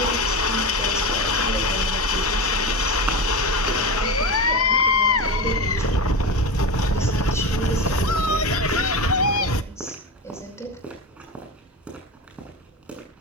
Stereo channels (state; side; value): normal; both; correlation 0.22